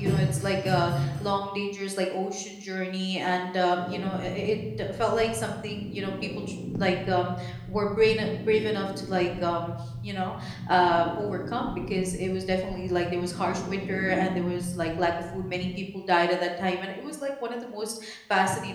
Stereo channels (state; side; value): identical; both; correlation 1.00